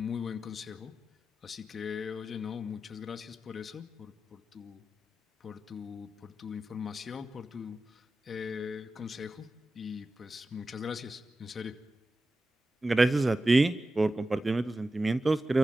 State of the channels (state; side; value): normal; both; correlation 0.93